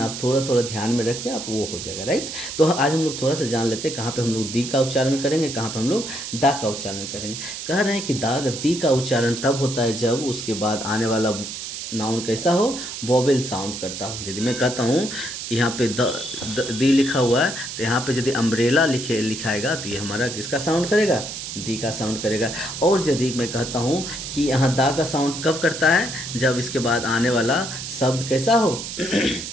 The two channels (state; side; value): noise; right; hiss, 7 dB below the sound